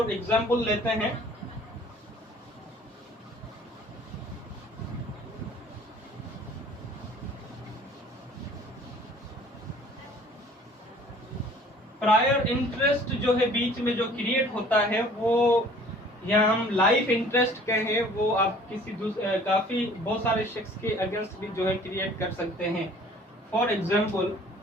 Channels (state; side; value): normal; both; correlation 0.52